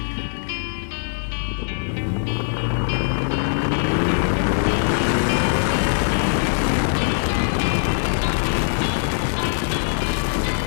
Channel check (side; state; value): right; silent; digital silence